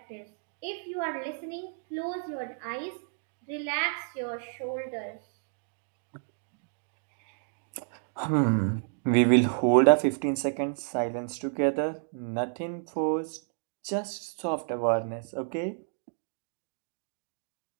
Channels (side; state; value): left; silent; digital silence